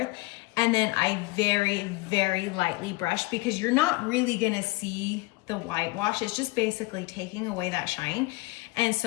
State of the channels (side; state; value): right; quieter; 22.6 dB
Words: and then I very, very lightly brushed because you're not really gonna see the whitewash. It's just basically taking away that shine. And